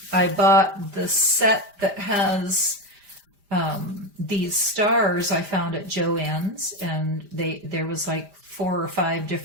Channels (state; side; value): late; left; 5.0 ms